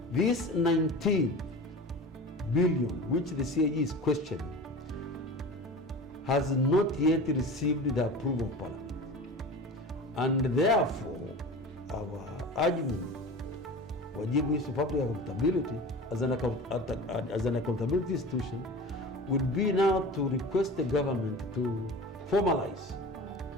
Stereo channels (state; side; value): normal; both; correlation 0.34